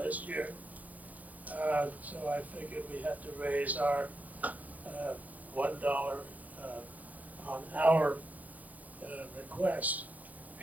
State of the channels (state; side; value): late; left; 0.078 ms